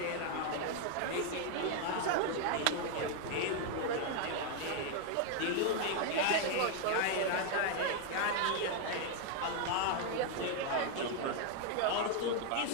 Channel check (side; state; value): both; different; correlation 0.00